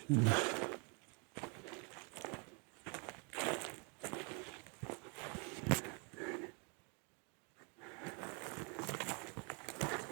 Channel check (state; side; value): quieter; left; 35.2 dB